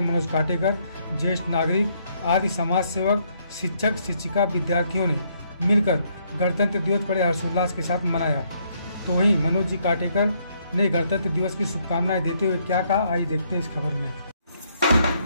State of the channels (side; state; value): both; inverted; correlation -0.71